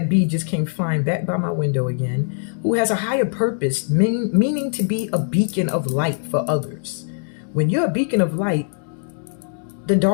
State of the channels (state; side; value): silent; right; digital silence